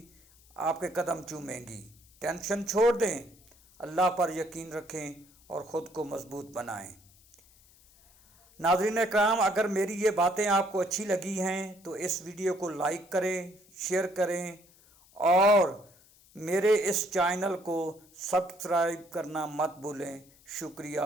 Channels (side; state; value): left; noise; hiss, 28 dB below the sound